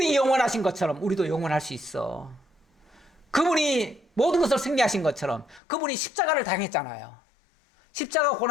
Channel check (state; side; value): drops out; right; at 5.6 s